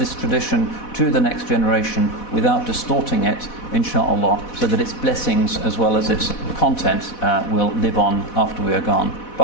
tradition to the next generation without distorting it, inshaAllah, so that its blessings as well as its content will live on after we are gone.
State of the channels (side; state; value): right; late; 4.1 ms